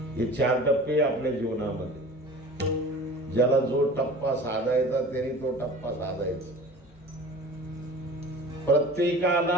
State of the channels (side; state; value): both; normal; correlation 0.41